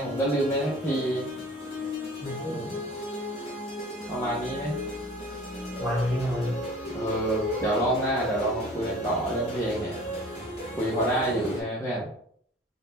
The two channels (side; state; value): both; normal; correlation 0.44